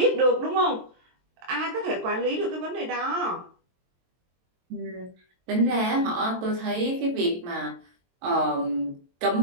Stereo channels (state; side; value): late; left; 22 ms